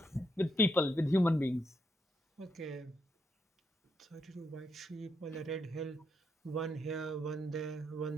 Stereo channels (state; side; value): normal; both; correlation 0.79